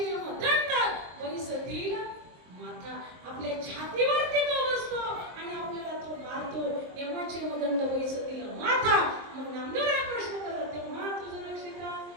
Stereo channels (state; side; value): late; left; 23 ms